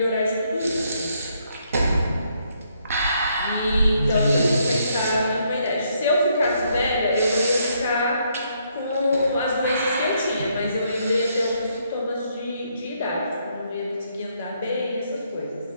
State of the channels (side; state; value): both; inverted; correlation -0.73